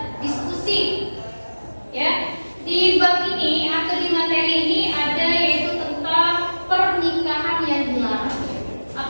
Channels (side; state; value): both; inverted; correlation -1.00